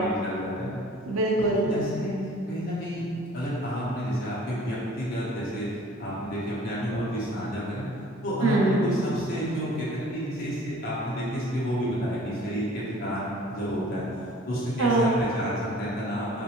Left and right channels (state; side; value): normal; both; correlation 0.50